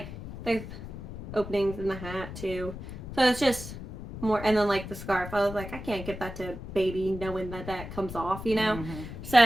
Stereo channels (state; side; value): noise; left; rumble, 10 dB below the sound